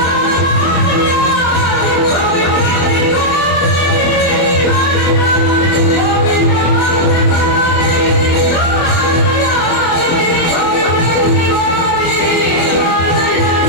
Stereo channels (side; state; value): right; late; 24 ms